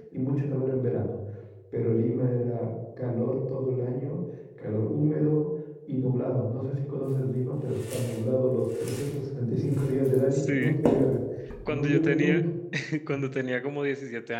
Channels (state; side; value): identical; both; correlation 1.00